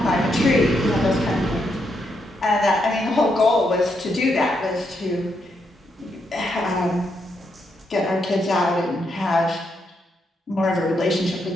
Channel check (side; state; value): both; normal; correlation 0.79